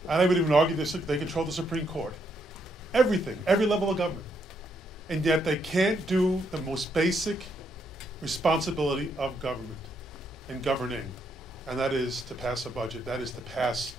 And I would even argue this, they control the Supreme Court. Everything, every level of government. And yet they can't do the most basic responsibility of government and governing, and that is to pass a budget, that is to pass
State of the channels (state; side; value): normal; both; correlation 0.76